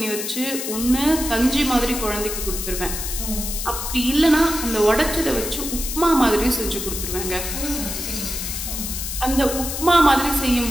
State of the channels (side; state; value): left; noise; hiss, 5 dB below the sound